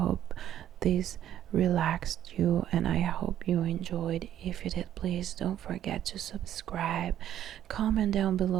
this relaxed you and I hope you enjoyed. If you did, please don't forget to subscribe, comment down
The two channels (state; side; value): quieter; left; 11.2 dB